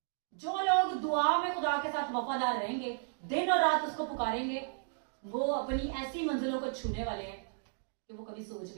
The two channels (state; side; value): silent; left; digital silence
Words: जो लोग दुआ में खुदा के साथ वफादार रहेंगे, दिन और रात उसको पुकारेंगे, वो अपनी ऐसी मंजिलों को छूने वाले हैं कि वो कभी सोच